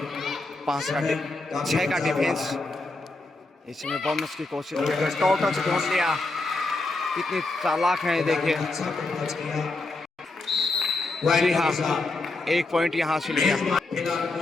6 का डिफेंस। इसमें बोनस की कोशिश कर रहे, टोटल से ढूंढ लिया। कितनी चालाक है देखिए। जी हाँ, 1 पॉइंट यहाँ से लिया।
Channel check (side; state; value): right; quieter; 3.1 dB